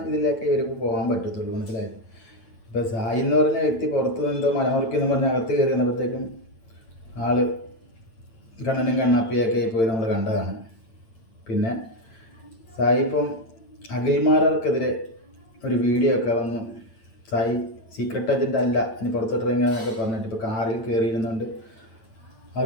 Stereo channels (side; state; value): right; late; 8.9 ms